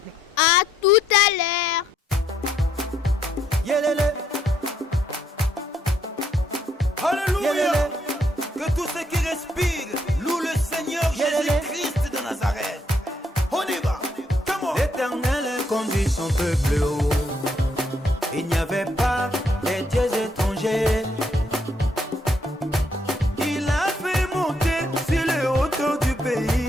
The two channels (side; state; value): both; normal; correlation 0.72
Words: À tout à l'heure. Yelele. Alléluia. Que tous ceux qui respirent louent le Seigneur Jésus-Christ de Nazareth. On y va. L'Éternel conduit son peuple haut. Il n'y avait pas des dieux étrangers. Il a fait monter sur les hauteurs du